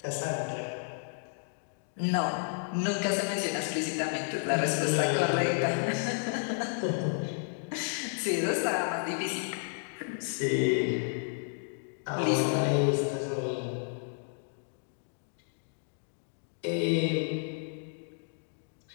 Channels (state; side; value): silent; right; digital silence